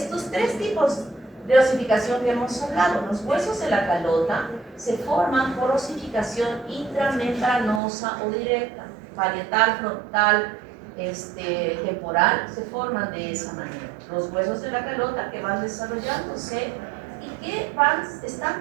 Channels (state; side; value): drops out; left; at 7.8 s